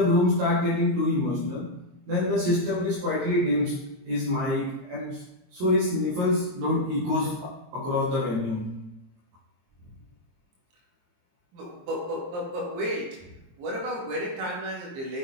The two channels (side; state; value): left; late; 22 ms